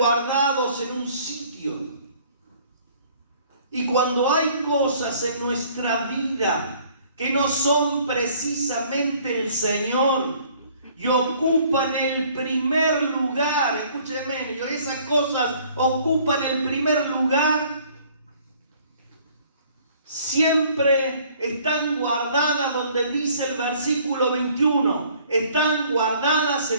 en un sitio. Y cuando hay cosas en nuestra vida que no son precisamente el Señor y ocupan el primer lugar, escúcheme, esas cosas ocupan el primer lugar, siempre están guardadas donde dice el versículo 21, están guardadas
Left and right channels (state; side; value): inverted; both; correlation -0.57